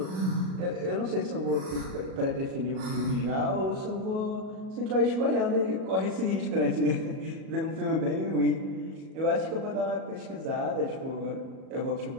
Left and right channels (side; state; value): left; late; 37 ms